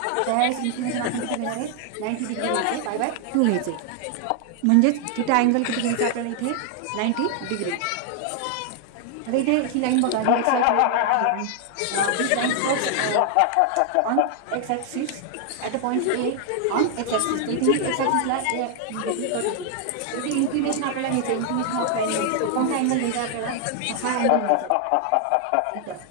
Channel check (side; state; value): both; different; correlation 0.00